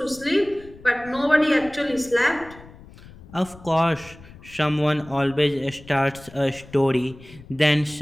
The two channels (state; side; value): noise; left; rumble, 20 dB below the sound